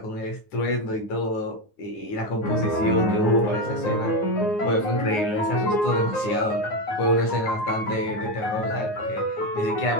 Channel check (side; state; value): right; late; 9.5 ms